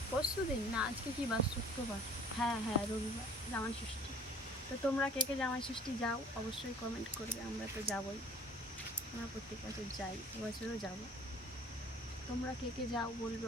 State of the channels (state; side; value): normal; both; correlation 0.50